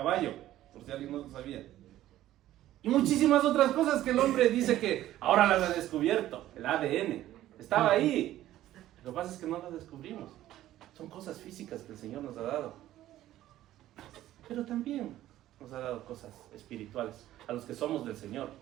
por si alguien no lo sabía. Y muchísimas otras cosas que el hombre dice que ahora las ha descubierto. El ADN estaba ahí. Lo que pasa es que no las descubrimos. Son cosas físicas que el Señor nos ha dado. Pero también nos ha dado cosas espirituales a los que somos del Señor.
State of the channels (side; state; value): left; quieter; 13.8 dB